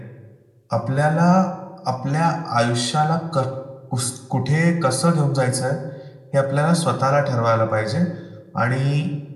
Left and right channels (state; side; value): identical; both; correlation 1.00